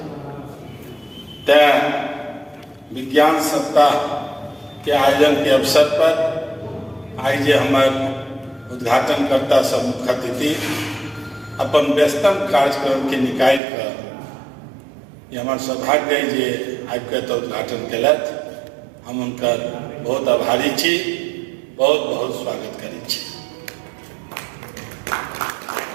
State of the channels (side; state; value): left; drops out; at 13.6 s